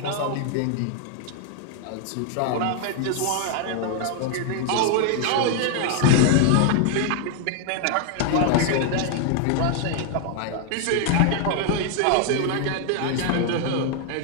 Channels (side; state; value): both; different; correlation 0.00